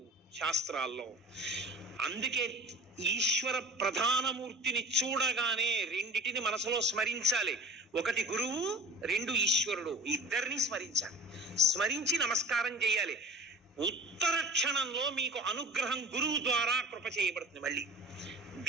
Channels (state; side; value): normal; both; correlation 0.40